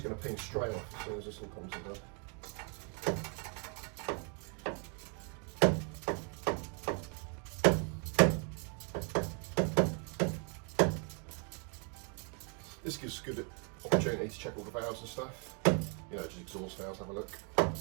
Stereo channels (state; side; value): quieter; left; 37.0 dB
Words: going to ping straight off as soon as this all comes undone. This gives us a good opportunity to check all the valves and stuff. You know, just exhaust valves, have a look.